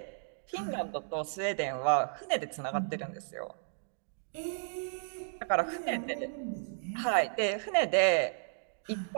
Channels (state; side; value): silent; left; digital silence